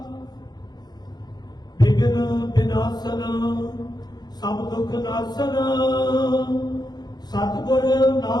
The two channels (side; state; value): right; late; 0.20 ms